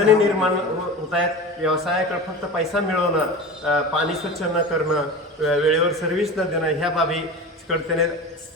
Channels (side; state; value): both; normal; correlation 0.31